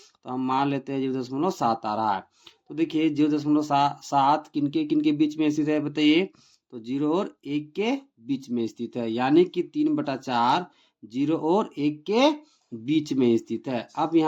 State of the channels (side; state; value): both; identical; correlation 1.00